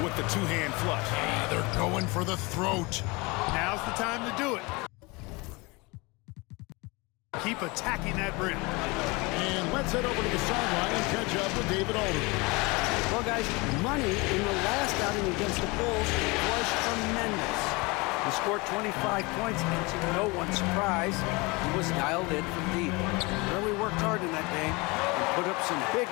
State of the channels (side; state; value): right; quieter; 25.9 dB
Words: with the two-hand flush. They're going for the throat. Now's the time to do it. Keep attacking that rim. And let's head over to the sideline and catch up with David Aldridge. Well, guys, Money in the last outing against the Bulls was tremendous. He scored 25 points, and to no one's surprise, he was dialed in from deep. Really worked hard in that game and put up some big